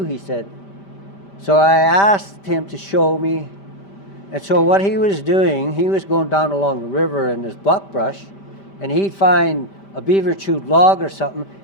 he said. So I asked him to show me. And so what he was doing, he was going down along the river in this buckbrush, and he'd find a beaver chewed log or something.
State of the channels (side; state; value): right; late; 5.1 ms